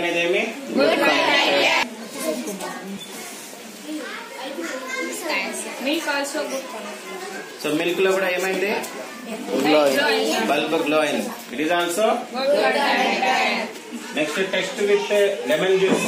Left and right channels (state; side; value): identical; both; correlation 1.00